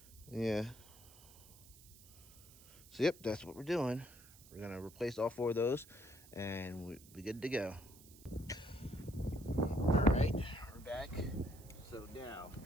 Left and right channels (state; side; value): noise; right; hiss, 21 dB below the sound